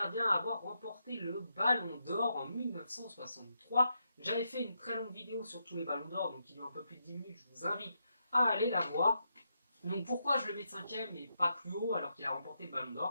à avoir remporté le Ballon d'Or en 1963. J'avais fait une très longue vidéo sur tous les Ballons d'Or, donc il y a un peu plus de 10 minutes. Je vous invite à aller la voir. Donc, pourquoi je le mets 5e et pas plus haut alors qu'il a remporté le Ballon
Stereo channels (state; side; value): inverted; both; correlation -0.83